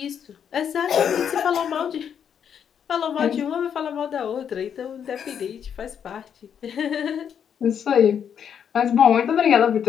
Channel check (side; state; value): right; quieter; 8.2 dB